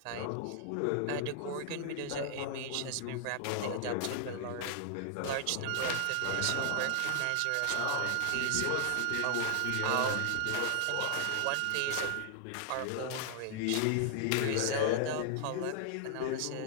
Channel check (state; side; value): different; both; correlation 0.00